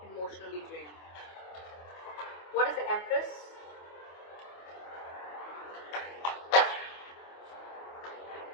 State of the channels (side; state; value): right; late; 24 ms